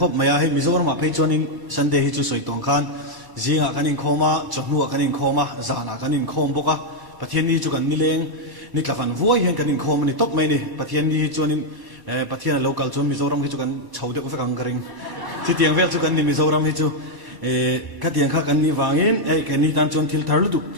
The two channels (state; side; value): late; left; 1.0 ms